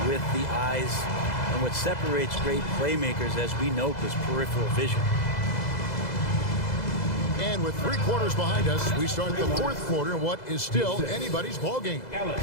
with the eyes. And what separates great playmakers, as we note, is peripheral vision. And with 3 quarters behind us, we start the fourth quarter in what is still anybody's ball game.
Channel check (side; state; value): right; late; 2.0 ms